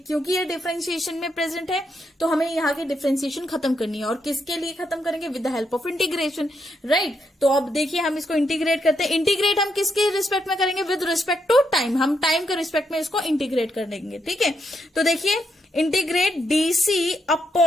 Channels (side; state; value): both; normal; correlation 0.79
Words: ये डिफरेंशिएशन में प्रेजेंट है तो हमें यहाँ की डिफरेंशिएशन खत्म करनी है, और किसके लिए खत्म करेंगे, with the help of integration, right. तो अब देखिए हम इसको इंटीग्रेट करते हैं। इंटीग्रेट हम किसके रिस्पेक्ट में करेंगे, विद रिस्पेक्ट टू टाइम, हम टाइम के रिस्पेक्ट में इसको इंटीग्रेट कर देंगे, ठीक है। तो देखिए integrate DC